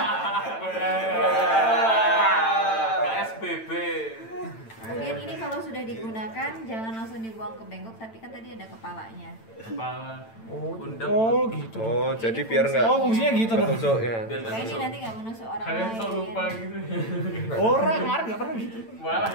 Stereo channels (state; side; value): late; right; 8.9 ms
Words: KSBB. Kemudian ini kalau sudah digunakan jangan langsung dibuang ke bengkok, tapi kan tadi ada kepalanya. Kepala. Undang. Oh, gitu. Oh, Ini jadi biar fungsinya. nggak Oh, fungsinya gitu dong. ketusuk ya. Biar nggak Kayak ini tusuk. nanti nggak menusuk orang Kalian lain. sok lupa gitu. Orang kemarin enggak pernah gitu. Malah.